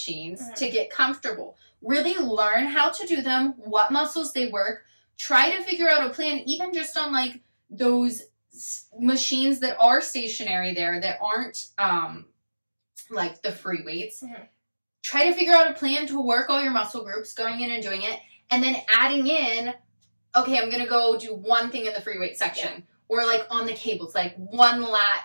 to get comfortable. Really learn how to do them, what muscles they work. Try to figure out a plan, even just on, like, those machines that are stationary there that aren't, like, the free weights. Try to figure out a plan to work all your muscle groups, going in and doing it, and then adding in, okay, I'm going to go do one thing in the free weight section. Yeah. Or, like, on the cables, like, one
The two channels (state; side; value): inverted; both; correlation -1.00